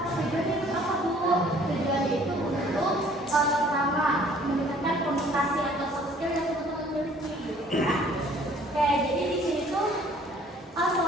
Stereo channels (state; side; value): normal; both; correlation 0.56